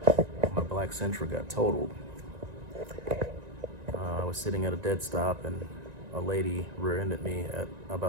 my black Sentra got totaled. I was sitting at a dead stop and a lady rear-ended me at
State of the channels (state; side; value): late; left; 1.9 ms